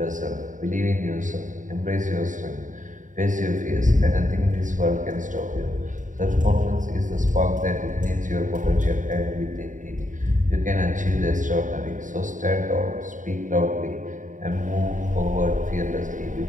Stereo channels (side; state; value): left; late; 0.37 ms